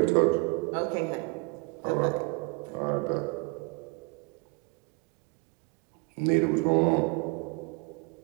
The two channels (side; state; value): left; quieter; 29.5 dB